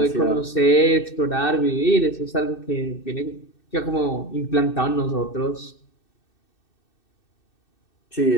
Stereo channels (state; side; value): late; right; 2.6 ms